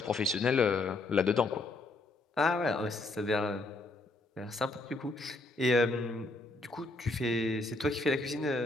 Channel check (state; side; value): quieter; right; 3.0 dB